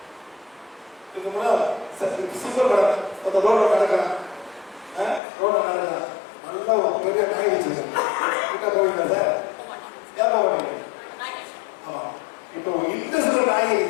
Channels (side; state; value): right; drops out; at 5.2 s